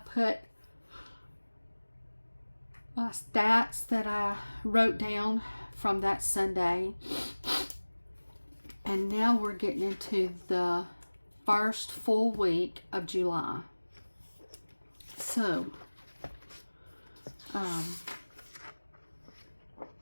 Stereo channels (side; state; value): both; inverted; correlation -1.00